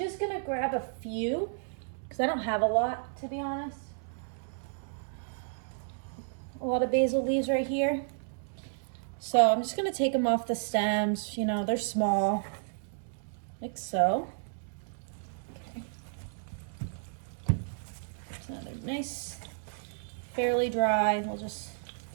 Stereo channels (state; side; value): silent; left; digital silence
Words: gonna grab a few because I don't have a lot, to be honest. A lot of basil leaves right here. So I'm just gonna take them off the stems. They're small, like so. Okay. So they're nice, fairly dry. We'll just